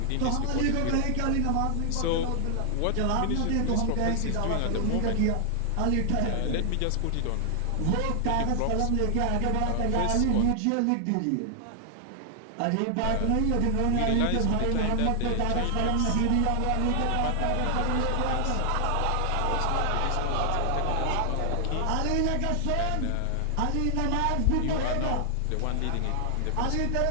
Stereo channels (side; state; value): both; different; correlation 0.00